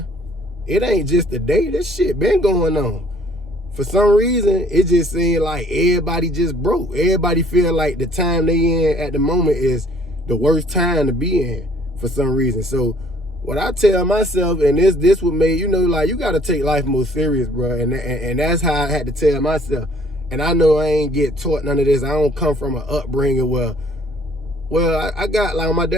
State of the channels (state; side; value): normal; both; correlation 0.59